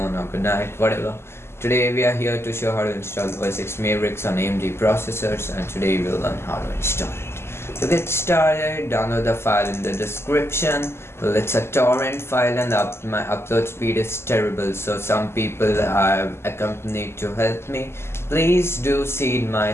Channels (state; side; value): late; right; 0.12 ms